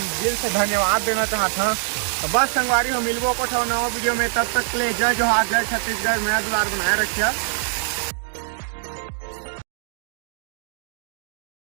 दिल से धन्यवाद देना चाहता हूँ। तो बस संगवारी हो मिलबो को नवा वीडियो में, तब तक के लिए जय जोहार, जय छत्तीसगढ़। मैं दुलार बनाए रखिए।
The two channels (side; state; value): left; silent; digital silence